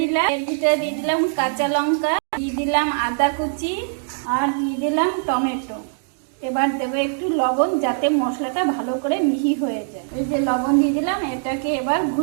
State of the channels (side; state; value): left; silent; digital silence